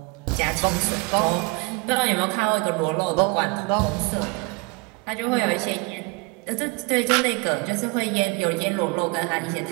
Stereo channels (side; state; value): left; quieter; 28.0 dB